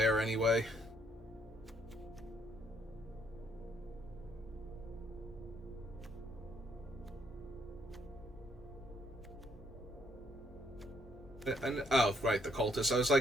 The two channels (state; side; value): normal; both; correlation 0.70